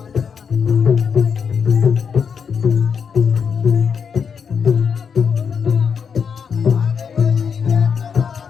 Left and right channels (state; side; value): quieter; right; 6.5 dB